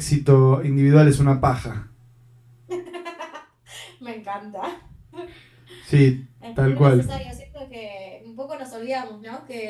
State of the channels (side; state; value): both; identical; correlation 1.00